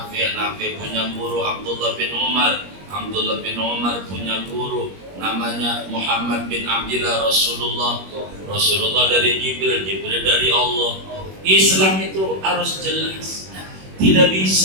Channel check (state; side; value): late; left; 21 ms